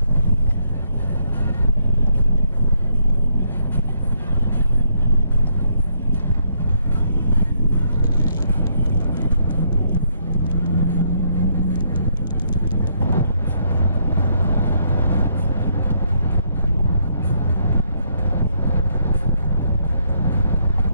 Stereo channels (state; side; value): inverted; both; correlation -0.72